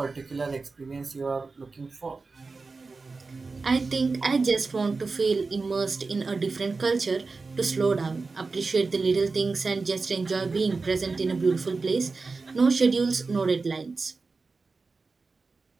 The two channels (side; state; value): left; quieter; 4.1 dB